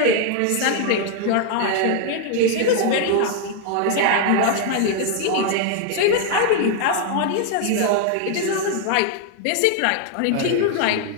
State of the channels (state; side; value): different; both; correlation 0.00